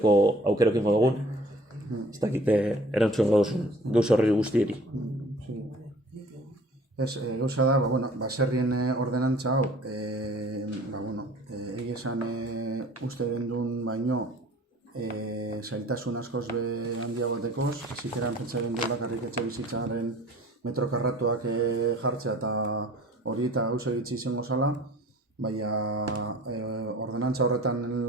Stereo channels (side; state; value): both; normal; correlation 0.49